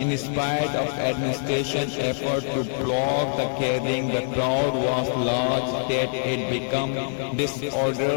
spite of administration effort to block the gathering, the crowd was large that it became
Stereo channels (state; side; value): silent; right; digital silence